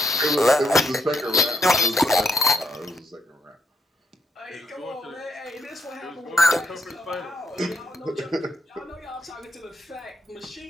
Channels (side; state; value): both; normal; correlation 0.76